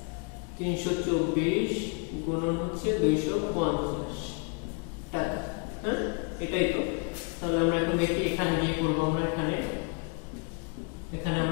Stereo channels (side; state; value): right; quieter; 36.1 dB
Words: 324 গুণন হচ্ছে 250 টাকা। হ্যাঁ, এটাই তো। তাহলে আমরা এখন দেখি এখানে দিয়ে করব, আমরা এখানে